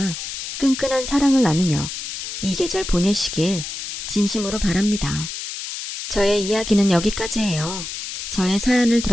끈끈한 사랑을 나누며 이 계절 보내시길 진심으로 바랍니다. 저의 이야기는 여기까지예요. 저의 사연을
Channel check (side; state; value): left; noise; hiss, 7 dB below the sound